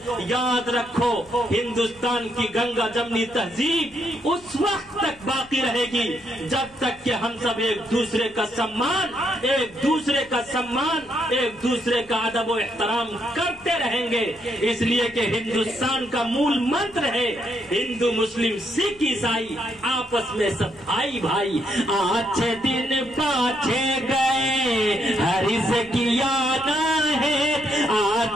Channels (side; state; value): left; noise; hum, 26 dB below the sound